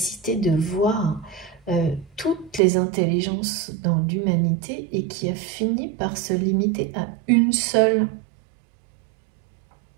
de voir toutes les intelligences dans l'humanité et qui a fini par se limiter à une seule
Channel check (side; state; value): left; drops out; at 2.6 s